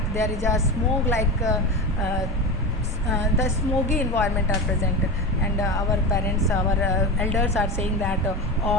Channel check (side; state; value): both; normal; correlation 0.24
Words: there is a smoke like the smoky environment are present, and our parents, our elders are saying that